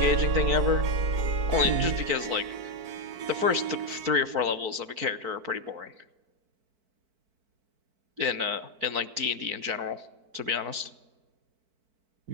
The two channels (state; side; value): late; left; 4.5 ms